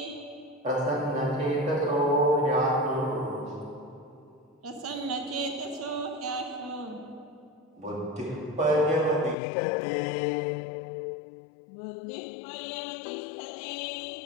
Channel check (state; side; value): drops out; right; at 9.3 s